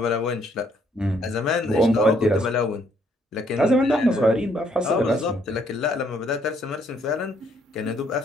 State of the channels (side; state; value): both; normal; correlation 0.68